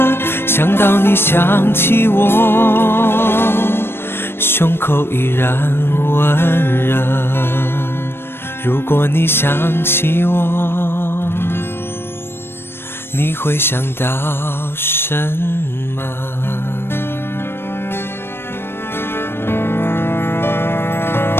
想到你想起我，胸口依然温热。如果你想起我，你会想到什么？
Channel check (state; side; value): late; right; 0.11 ms